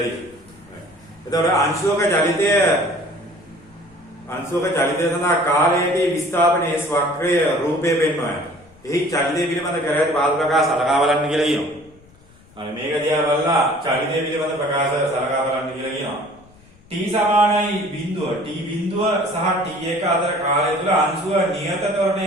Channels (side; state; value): left; noise; rumble, 27 dB below the sound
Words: තියෙනවා. එතකොට අංශුවක චලිතය සඳහා කාලයේදී විස්ථාපනයේ වක්‍රය රූපය පෙන්වනවා. එහි චලිතය පිළිබඳ කර ඇති බාහිර ප්‍රකාශ සලකා බලන්න කියලා කියනවා. අනේ මේක දිහා බලලා චලිතය පිළිබඳ ප්‍රකාශ සලකා බලන්න කියලා කියනවා. t සමානයි බිඳුව. t බිඳුව සහ t1 අතර කාලය තුල අංශුව නියත